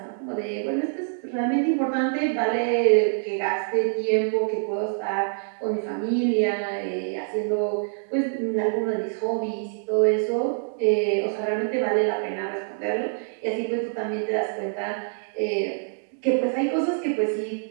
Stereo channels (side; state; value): left; silent; digital silence